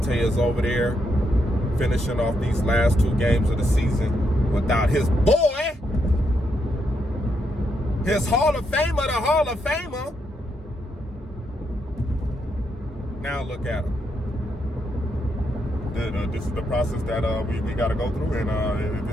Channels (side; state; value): both; normal; correlation 0.79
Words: is over there, finishing off these last two games of the season without his boy, his Hall of Famer, the Hall of Famer. Now look at him. This is the process that we got to go through, and